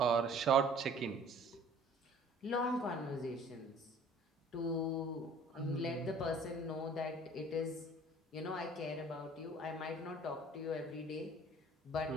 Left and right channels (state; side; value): normal; both; correlation 0.51